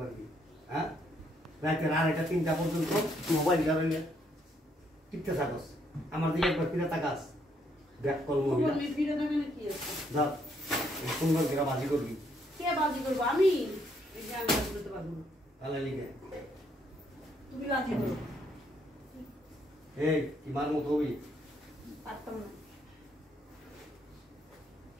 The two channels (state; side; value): normal; both; correlation 0.71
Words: পারবি? হ্যাঁ, রাইতে আড়াইটা 3টা পর্যন্ত মোবাইল ধরে টিপতে থাকস, আমার দিকে একবার ফিরে তাকাস। ব্যাক কল মহিলা তুমি ফিরে দেবে না কি আছে যা সুন্দর করে বাজি করবি। কে বাজি করবো আমি এই যে আমি বাজি করতে পারবো না তাহলে লিখে তুমি বাজি করো এই কি মার মতো হবি? পারতাম না